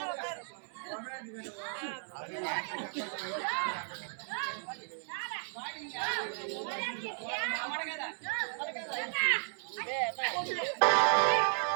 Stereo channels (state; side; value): silent; left; 55 dB below the other